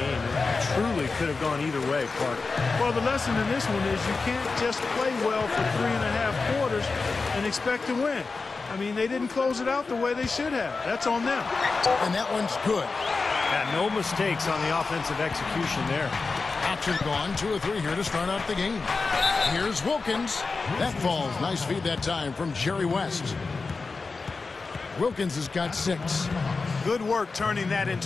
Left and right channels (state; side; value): quieter; right; 4.2 dB